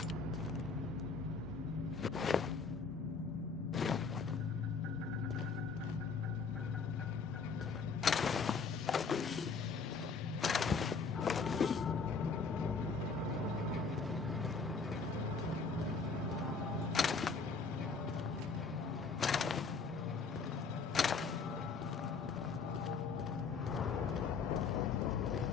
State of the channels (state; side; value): quieter; right; 4.9 dB